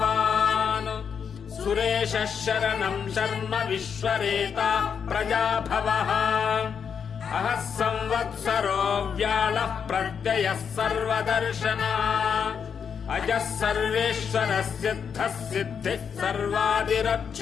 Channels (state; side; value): quieter; right; 6.9 dB